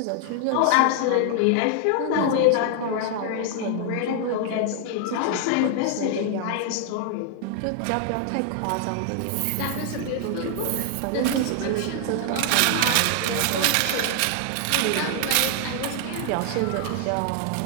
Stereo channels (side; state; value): both; different; correlation 0.00